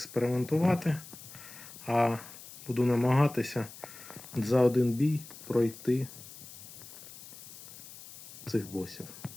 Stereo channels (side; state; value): left; noise; hiss, 16 dB below the sound